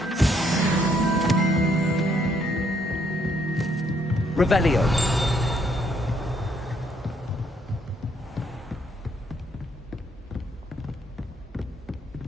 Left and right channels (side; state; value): both; normal; correlation 0.70